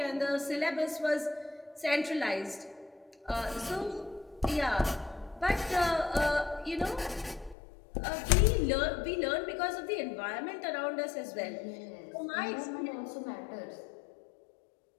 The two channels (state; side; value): drops out; right; at 7.6 s